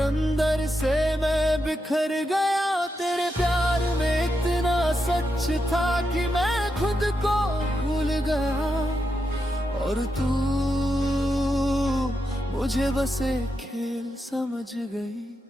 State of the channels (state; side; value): normal; both; correlation 0.85